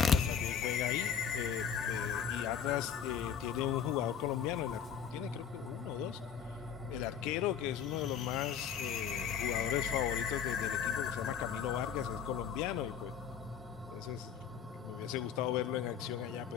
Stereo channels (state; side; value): quieter; right; 7.9 dB